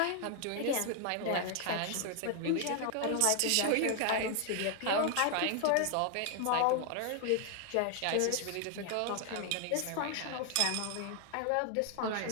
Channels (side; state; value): both; different; correlation 0.00